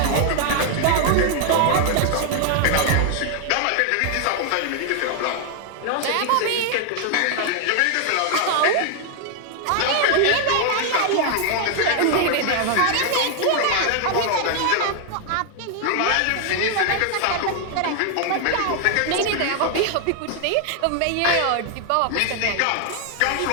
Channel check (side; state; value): both; different; correlation 0.00